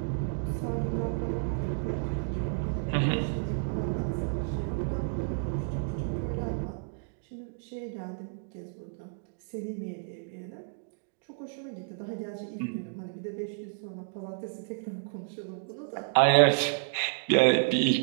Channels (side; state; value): left; silent; digital silence